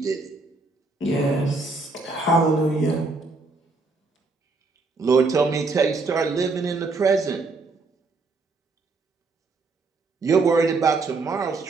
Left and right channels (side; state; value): left; quieter; 3.7 dB